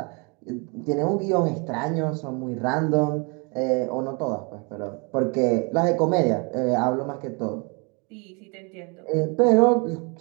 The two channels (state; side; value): quieter; left; 32.2 dB